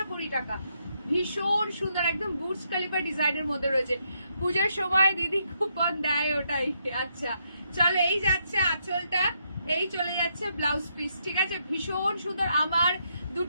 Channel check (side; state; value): both; inverted; correlation -0.77